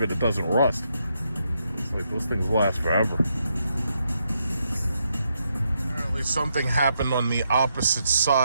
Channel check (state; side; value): inverted; both; correlation -0.80